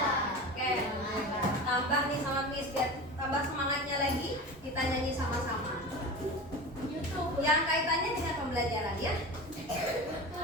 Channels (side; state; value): both; normal; correlation 0.31